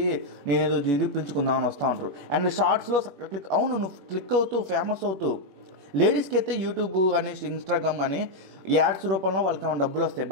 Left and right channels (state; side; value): late; left; 21 ms